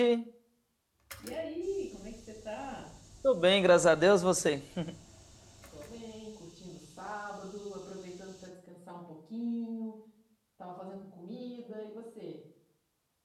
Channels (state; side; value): identical; both; correlation 1.00